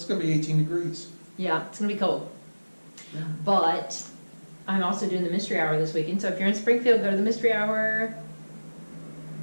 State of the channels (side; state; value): both; inverted; correlation -1.00